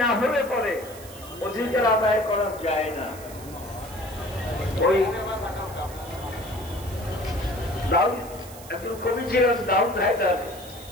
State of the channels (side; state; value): right; noise; hiss, 17 dB below the sound